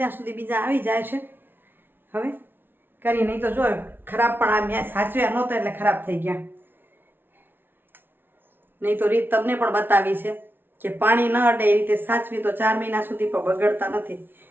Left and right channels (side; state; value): left; late; 0.10 ms